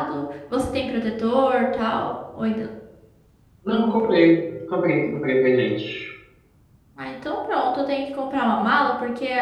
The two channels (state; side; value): identical; both; correlation 1.00